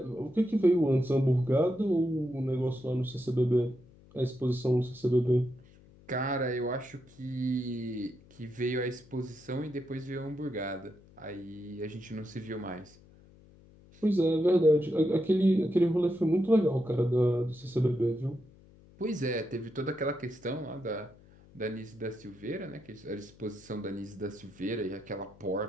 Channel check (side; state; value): left; noise; hum, 25 dB below the sound